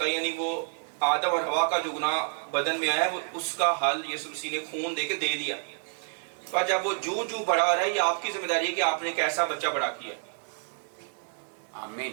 یعنی وہ آدم اور حوا کا جو گناہ بدن میں آیا ہے وہ اس کا حل یسوع مسیح نے خون دے کے دے دیا. پر جب وہ جو بڑا رہا ہے، یہ آپ کی ذمہ داری ہے کہ آپ نے کیسا بچہ بڑا کیا.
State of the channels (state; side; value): silent; left; 59 dB below the other